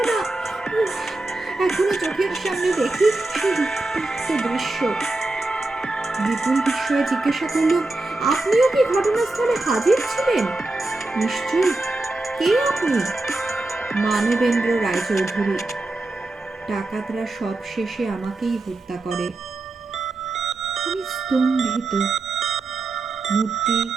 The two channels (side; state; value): left; quieter; 3.0 dB